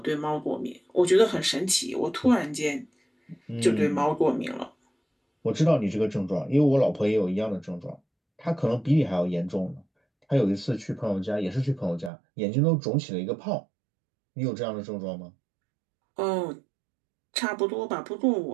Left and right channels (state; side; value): drops out; left; at 12.1 s